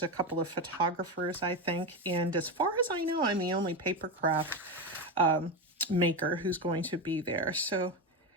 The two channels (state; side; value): normal; both; correlation 0.16